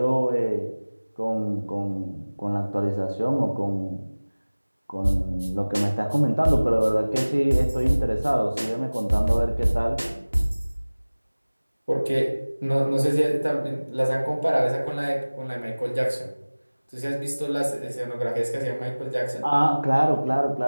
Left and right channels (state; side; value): inverted; both; correlation -1.00